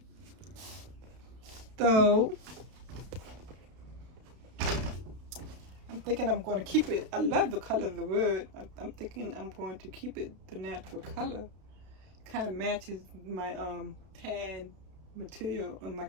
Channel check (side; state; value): left; late; 32 ms